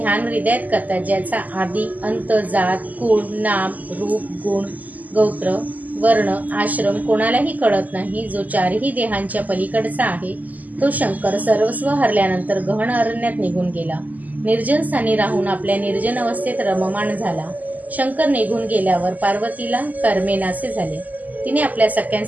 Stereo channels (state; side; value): late; left; 0.080 ms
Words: हृदयात करतात, ज्याचा आदी अंत, जात, कुळ, नाम, रूप, गुण, गोत्र, वर्ण, आश्रम कोणालाही कळत नाही, जो 4ही देहांच्या पलीकडचा आहे, तो शंकर सर्वस्व हरल्यानंतर गहन अरण्यात निघून गेला. निर्जन स्थानी राहून आपल्या निर्जन अवस्थेत रममाण झाला. शंकर निघून गेल्यावर पार्वतीला कर्मेनासे झाले. तिने आपल्या